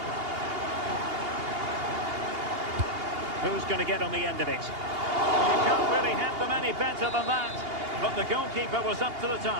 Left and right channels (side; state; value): left; late; 2.8 ms